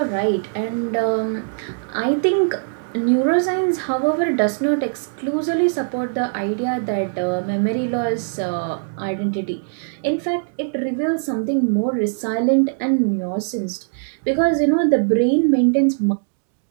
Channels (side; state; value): left; silent; digital silence